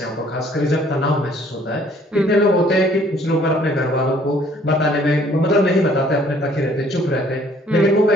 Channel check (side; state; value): both; normal; correlation 0.59